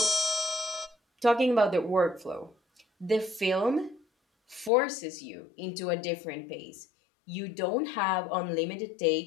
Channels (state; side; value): drops out; right; at 4.7 s